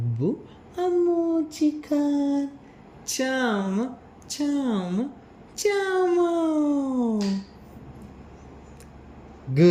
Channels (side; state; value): both; identical; correlation 1.00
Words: ಅಮ್ಮೂಚಿ ಖಾನ್ ಚಾಮ ಚಾಮ ಚಾಮ.